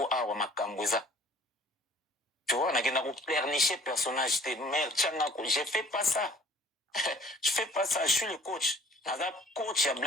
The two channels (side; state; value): both; normal; correlation 0.52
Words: awa makambouza. Tu vois, on a pleurnicher personnage, je fais pas ça. Je fais pas ça, je suis le coach. Naza coach, il y a